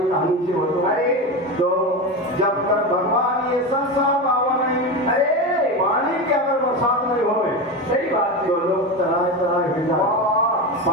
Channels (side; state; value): both; normal; correlation 0.20